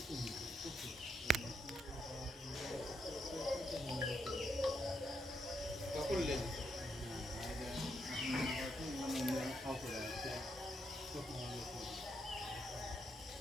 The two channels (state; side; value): normal; both; correlation 0.77